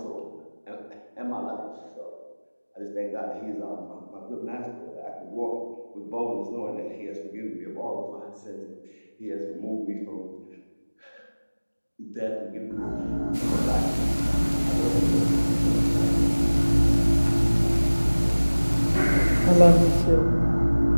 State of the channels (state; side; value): inverted; both; correlation -1.00